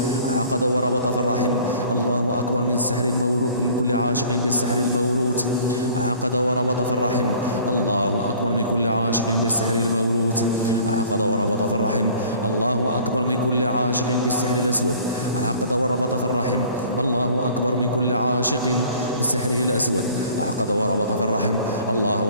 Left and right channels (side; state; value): both; inverted; correlation -0.50